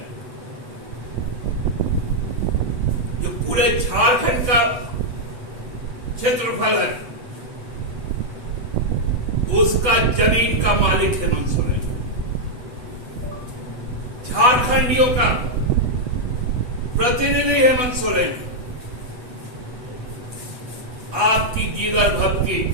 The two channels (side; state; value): left; late; 8.1 ms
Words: जो पूरे झारखंड का क्षेत्रफल है, उसका जमीन का मालिक हेमंत सोरेन। झारखंडियों का प्रतिनिधि हेमंत सोरेन। आपकी जिगर भक्ति,